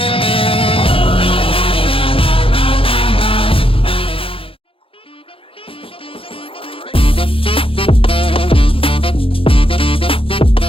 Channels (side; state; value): right; late; 0.27 ms